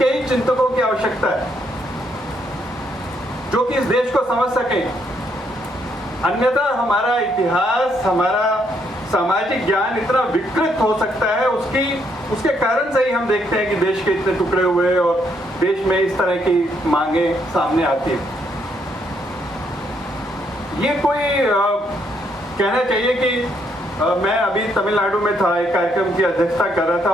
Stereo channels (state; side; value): normal; both; correlation 0.73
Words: ही चिंतकों की आवश्यकता है, जो कि इस देश को समझ सके। अन्यथा हमारा इतिहास, हमारा सामाजिक ज्ञान इतना विकृत हो सकता है, उसके कारण से ही हम देखते हैं कि देश के इतने टुकड़े हुए और देश में इस तरह की मांगे सामने आती है। ये कोई कहना चाहिए कि मैं अभी तमिलनाडु में था, एक कार्यक्रम की अध्यक्षता कर रहा था।